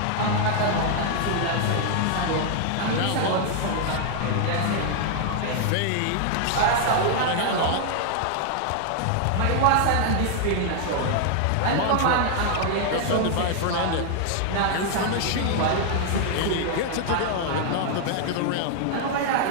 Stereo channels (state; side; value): different; both; correlation 0.00